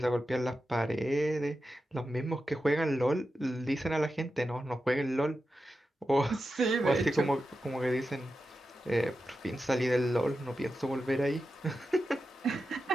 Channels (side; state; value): both; normal; correlation 0.90